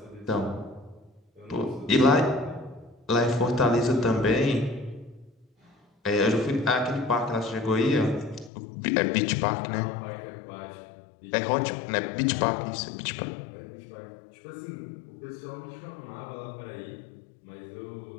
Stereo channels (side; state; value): right; drops out; at 8.5 s